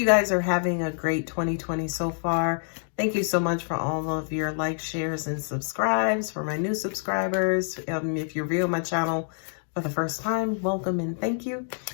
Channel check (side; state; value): right; silent; digital silence